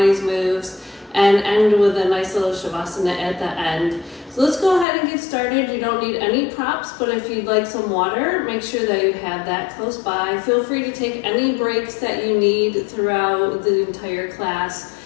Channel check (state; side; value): drops out; right; at 4.9 s